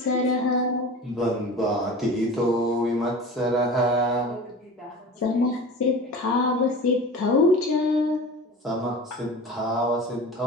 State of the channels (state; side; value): normal; both; correlation 0.36